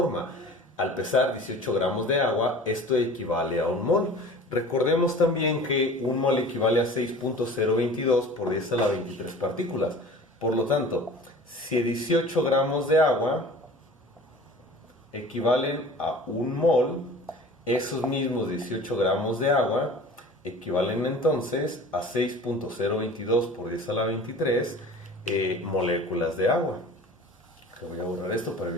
al pesar 18 gramos de agua, esto equivale a un mol. Recordemos también que un mol equivale a 6.022 por 10 a la 23 partículas. Por lo tanto, si 18 gramos de agua equivalen a un mol, esos mismos 18 gramos de agua equivalen entonces a 6.022 por 10 a la 23 moléculas de agua. Voy a borrar esto para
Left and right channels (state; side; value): normal; both; correlation 0.42